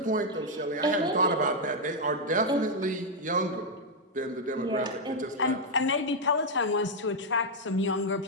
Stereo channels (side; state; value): both; normal; correlation -0.01